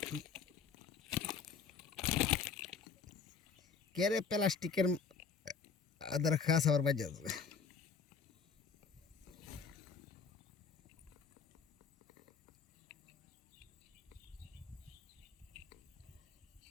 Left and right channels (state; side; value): quieter; right; 5.7 dB